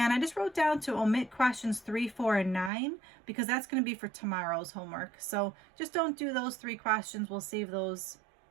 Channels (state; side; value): drops out; left; at 2.7 s